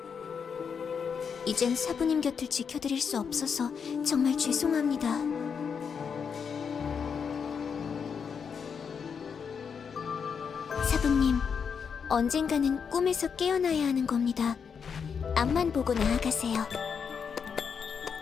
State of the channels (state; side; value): quieter; right; 6.5 dB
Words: 이젠 사부님 곁을 지켜드릴 수 없어서 정말 죄송합니다. 사부님, 언젠가는 꿈에서 깨어나야 하는 겁니다. 앞만 보고 나아가세요.